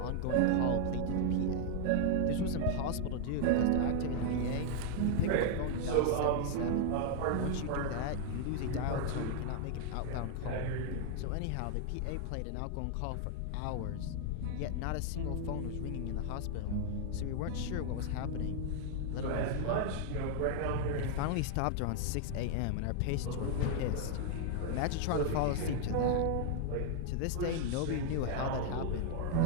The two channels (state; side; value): different; both; correlation 0.00